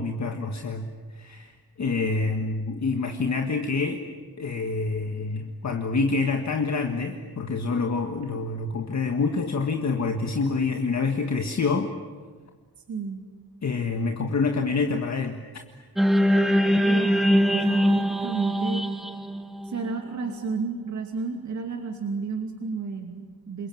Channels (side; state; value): both; normal; correlation 0.61